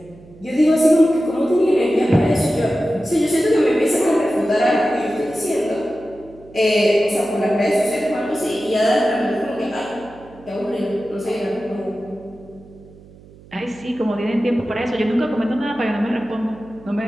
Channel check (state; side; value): noise; right; hum, 23 dB below the sound